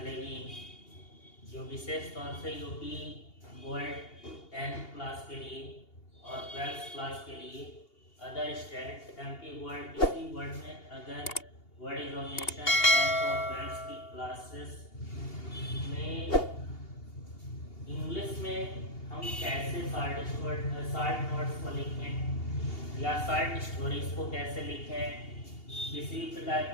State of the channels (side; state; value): right; late; 2.8 ms